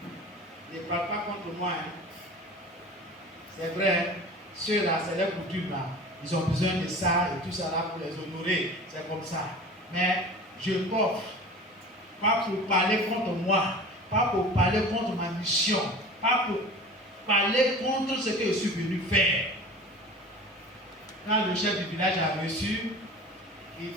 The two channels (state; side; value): normal; both; correlation 0.38